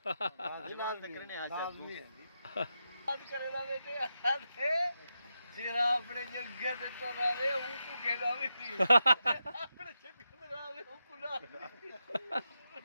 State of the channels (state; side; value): inverted; both; correlation -0.87